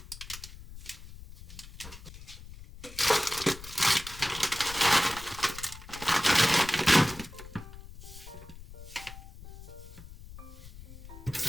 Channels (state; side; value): noise; left; rumble, 15 dB below the sound